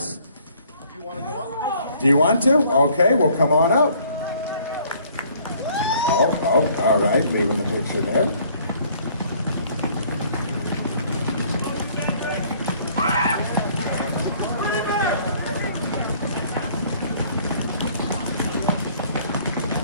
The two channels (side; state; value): both; inverted; correlation -0.59